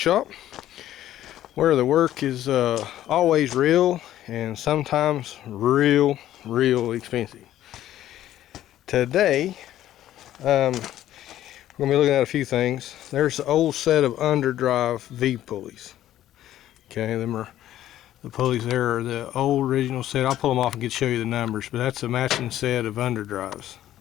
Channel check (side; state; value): right; quieter; 12.8 dB